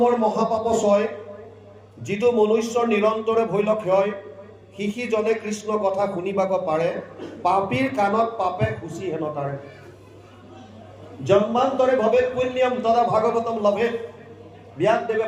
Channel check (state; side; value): identical; both; correlation 1.00